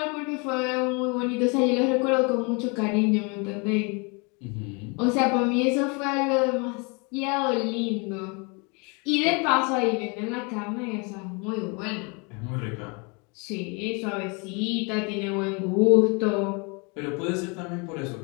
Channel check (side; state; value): right; quieter; 31.5 dB